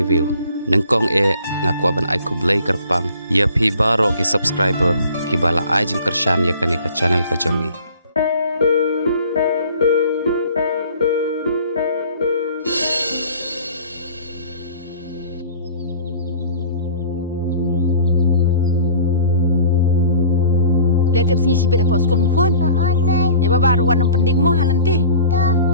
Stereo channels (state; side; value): inverted; both; correlation -0.46